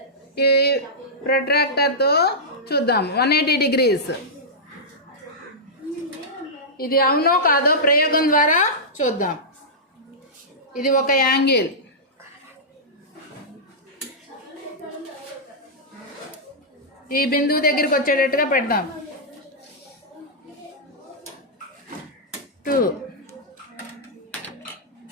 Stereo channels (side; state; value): both; normal; correlation -0.12